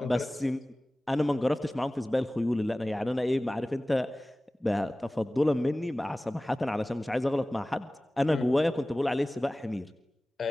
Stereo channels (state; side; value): normal; both; correlation 0.98